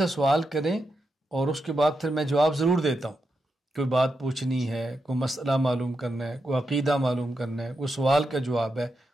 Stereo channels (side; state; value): both; normal; correlation 0.86